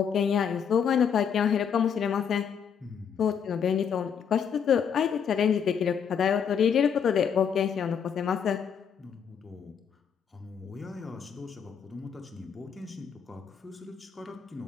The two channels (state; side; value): quieter; right; 7.4 dB